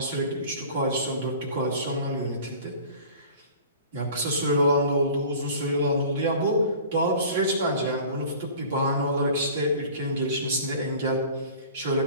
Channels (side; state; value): both; inverted; correlation -0.43